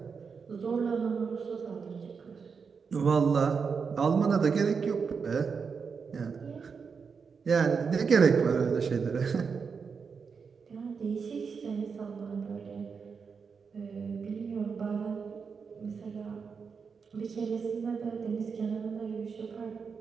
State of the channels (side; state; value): left; quieter; 5.7 dB